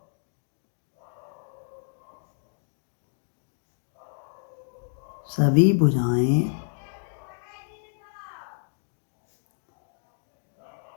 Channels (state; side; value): silent; right; digital silence